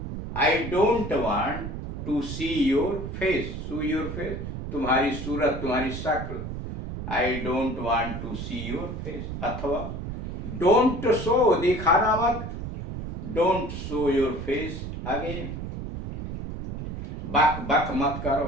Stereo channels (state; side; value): noise; right; rumble, 7 dB below the sound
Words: I don't want to see your face. So your face, तुम्हारी सूरत, तुम्हारी शक्ल। I don't want to see your face. अथवा डोंट शो, दिखाना मत। Don't show your face again. बक बक मत करो।